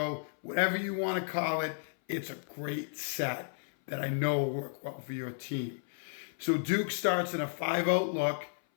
Whatever you want to call it, it's a great set that I know will work well for your team. So Duke starts in a 5-out look,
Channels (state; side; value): silent; right; 56 dB below the other